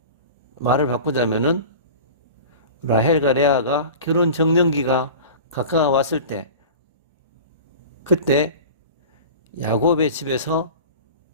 말을 바꾸자면은 라헬과 레아가 결혼 정년기가 가까워왔을 때, 그때 야곱의 집에서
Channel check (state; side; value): inverted; both; correlation -0.36